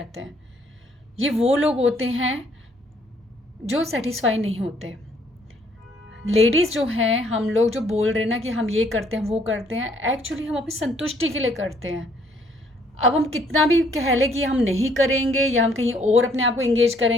हैं। ये वो लोग होते हैं जो सेटिस्फाई नहीं होते। लेडीज़ जो हैं, हम लोग जो बोल रहे हैं ना कि हम ये करते हैं वो करते हैं, एक्चुअली हम अपनी संतुष्टि के लिए करते हैं। अब हम कितना भी कह लें कि हम नहीं करेंगे या हम कहीं और अपने आप को इंगेज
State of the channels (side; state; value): both; normal; correlation 0.65